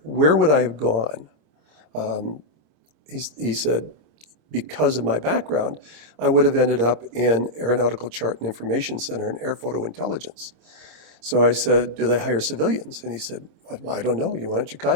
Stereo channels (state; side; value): late; left; 26 ms